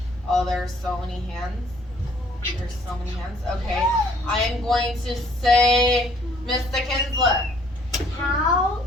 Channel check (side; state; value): both; normal; correlation 0.61